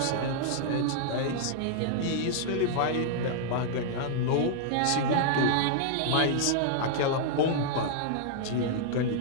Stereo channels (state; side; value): different; both; correlation -0.01